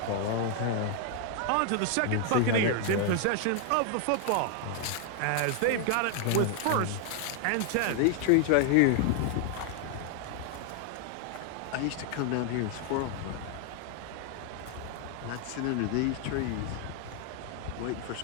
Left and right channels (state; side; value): different; both; correlation 0.00